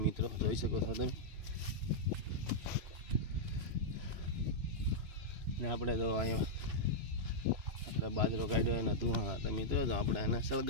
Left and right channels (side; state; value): left; late; 3.0 ms